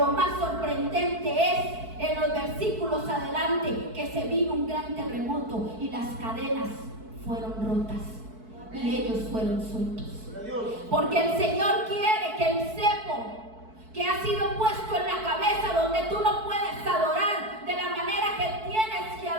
más sorprendente es en los versículos adelante que se vino un gran terremoto y las cadenas fueron rotas y ellos fueron sueltos. Porque el Señor quiere que el cepo que ha sido puesto en la cabeza, donde tú no puedes adorar de la manera que tienes que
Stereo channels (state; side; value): late; left; 4.6 ms